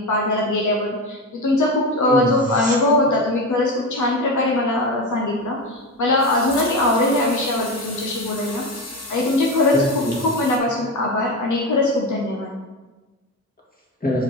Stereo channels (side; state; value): both; normal; correlation 0.19